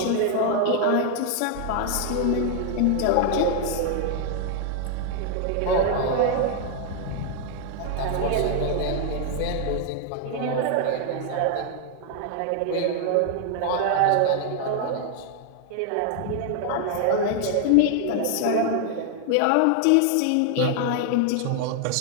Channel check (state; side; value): different; both; correlation 0.00